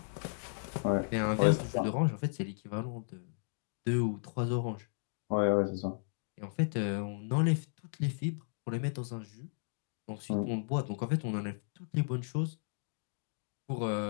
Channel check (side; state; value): right; silent; digital silence